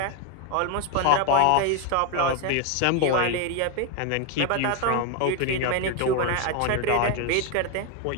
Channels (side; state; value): both; different; correlation 0.01